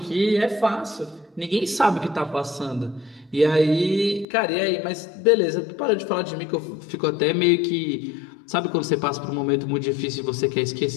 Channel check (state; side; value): drops out; right; at 4.2 s